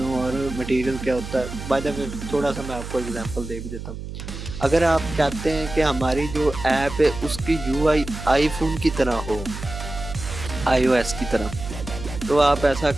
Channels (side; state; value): right; noise; hum, 9 dB below the sound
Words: और मटेरियल क्या होता है। बाय द वे थोड़ा सा मैं आपको एग्जांपल दे भी देता हूँ। अगर आप चाहते हैं कि हमारी जो ऐप है उसकी यूआई आईफोन की तरह हो, आईओएस की तरह, तो आप ऐसा